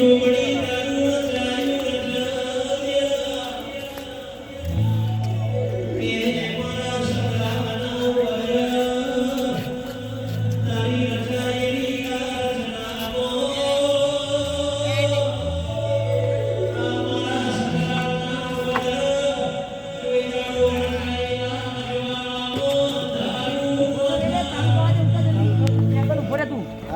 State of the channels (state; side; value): identical; both; correlation 1.00